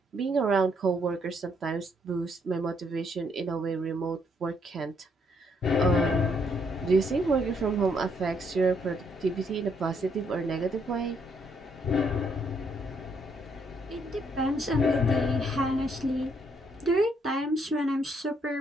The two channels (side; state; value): both; normal; correlation 0.72